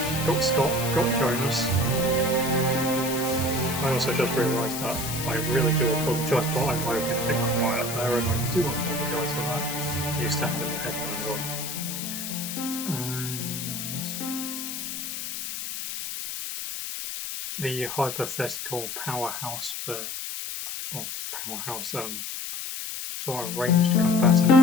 Got Scott, got Jonas. I also just realised that I really do apologise, but I'm hoping to be quiet there, and I do apologise for that. I used to have the headphones on. And the hypothetical powerhouse sort of ranged combatant for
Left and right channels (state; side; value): noise; left; hiss, 6 dB below the sound